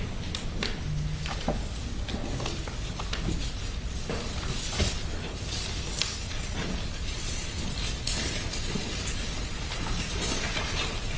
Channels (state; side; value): identical; both; correlation 1.00